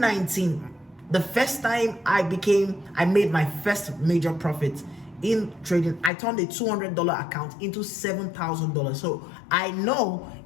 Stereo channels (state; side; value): drops out; right; at 6.1 s